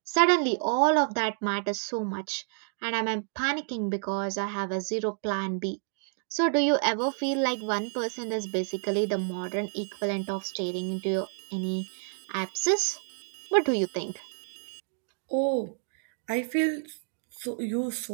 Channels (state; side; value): silent; left; digital silence